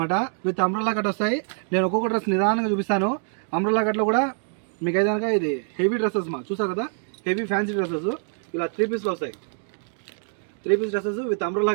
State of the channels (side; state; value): left; silent; 56 dB below the other